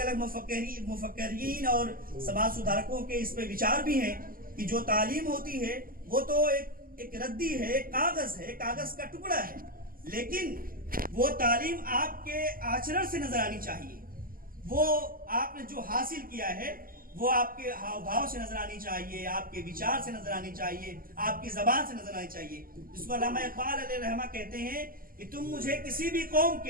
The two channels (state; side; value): late; left; 0.42 ms